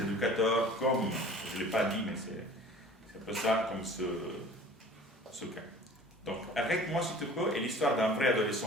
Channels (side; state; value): both; normal; correlation 0.45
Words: éducateurs, comme, je ne l'ai pas dit, mais c'est un peu ça, comme ce cas. Donc, Arrête-moi si tu peux est l'histoire d'un vrai